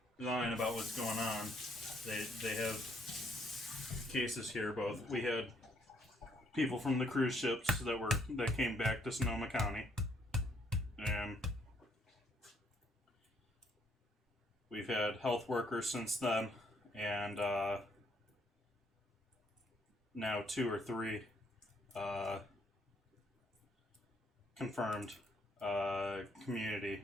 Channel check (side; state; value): both; normal; correlation 0.69